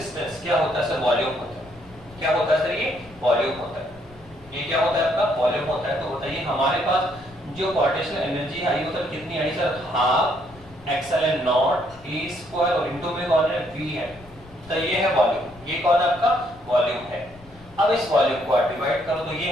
क्या होता है सर, वॉल्यूम होता है, क्या होता है सर, ये वॉल्यूम होता है, ये क्या होता है आपका, वॉल्यूम होता है, तो बताइए हमारे पास जो पोटेंशियल एनर्जी आई वो सर कितनी आई sir, half epsilon naught E square और इनटू में कौन है, वी है, तो ये है वॉल्यूम, ये कौन है आपका, वॉल्यूम है। अब इस वॉल्यूम को आप डिवाइड करो, तो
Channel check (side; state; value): left; noise; rumble, 23 dB below the sound